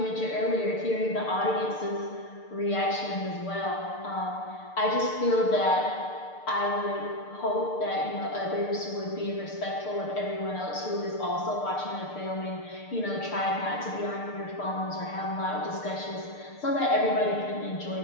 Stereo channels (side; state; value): right; late; 6.7 ms